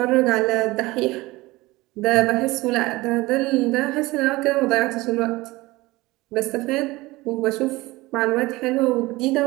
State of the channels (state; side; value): quieter; left; 20.5 dB